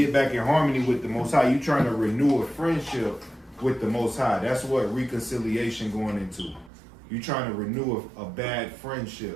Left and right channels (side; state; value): left; drops out; at 6.7 s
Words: back in harmony with the Most High. You're trying to renew a friendship with the Most High. That's what reconciliation going into. You're trying to renew a bad